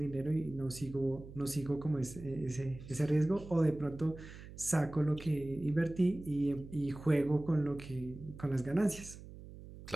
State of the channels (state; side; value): noise; right; hum, 15 dB below the sound